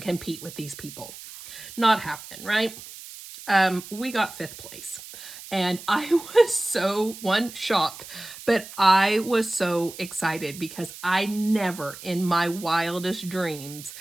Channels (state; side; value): noise; right; hiss, 14 dB below the sound